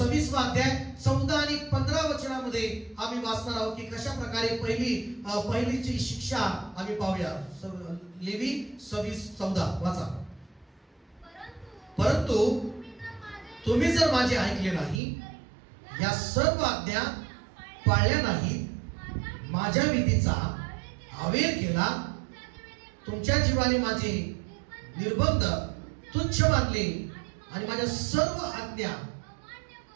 अध्याय 14 आणि 15 वचनामध्ये आम्ही वाचणार आहोत की कशा प्रकारे पहिलीची शिक्षा आम्ही पाहूया. लेवी 26:14 वाचा. परंतु तुम्ही जर माझे ऐकले नाही, या सर्व आज्ञा पाळल्या नाही, माझ्या विधीचा अवेर केला, तुमच्या जीवाने माझे निर्बंध तुच्छ मानले आणि माझ्या सर्व आज्ञा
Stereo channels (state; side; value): drops out; left; at 15.0 s